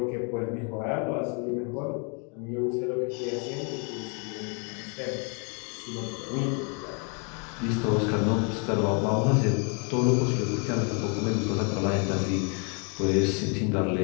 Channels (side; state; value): right; quieter; 36.8 dB